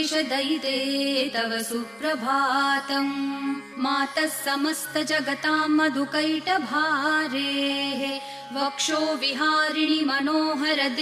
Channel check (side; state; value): both; identical; correlation 1.00